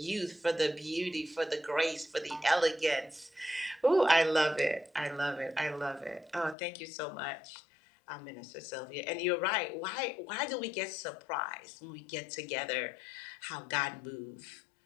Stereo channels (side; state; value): right; drops out; at 6.6 s